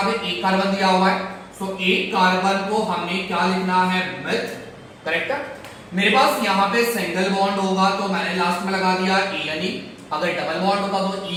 पे 1 कार्बन दिया हुआ है, सो 1 कार्बन को हमने क्या लिखना है, मिथ, करेक्ट है। मेरे पास यहाँ पे सिंगल बॉन्ड होगा तो मैंने लास्ट में लगा दिया ANE, अगर डबल बॉन्ड होता तो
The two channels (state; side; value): identical; both; correlation 1.00